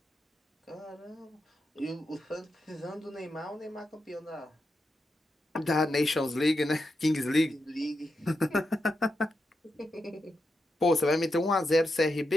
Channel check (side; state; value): both; normal; correlation 0.86